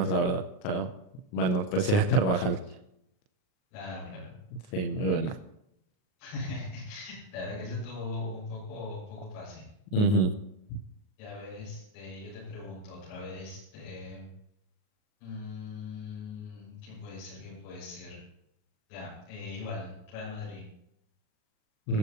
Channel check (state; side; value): late; right; 38 ms